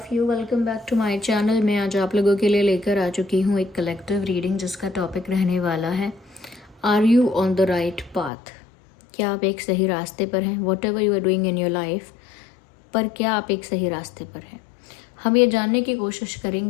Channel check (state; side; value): drops out; right; at 8.3 s